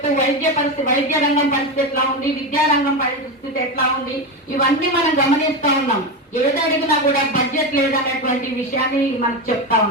వైద్య రంగం పరిస్థితి ఎట్లా ఉంది, విద్యారంగం పరిస్థితి ఎట్లా ఉంది, ఇవన్నీ మనం గమనిస్తా ఉన్నాం. ఏది అడిగినా కూడా బడ్జెట్ లేదనేటువంటి విషయాన్ని మనకు చెప్తా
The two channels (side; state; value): both; normal; correlation 0.16